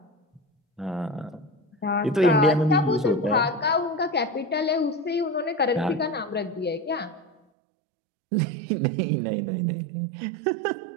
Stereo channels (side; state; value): left; drops out; at 7.4 s